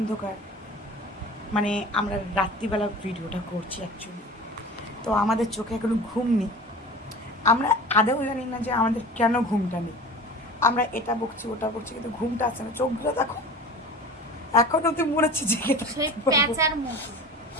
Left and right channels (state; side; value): normal; both; correlation 0.37